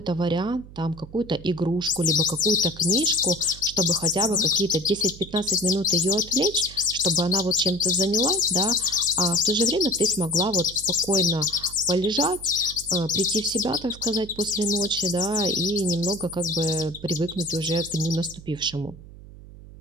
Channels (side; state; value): right; noise; hum, 17 dB below the sound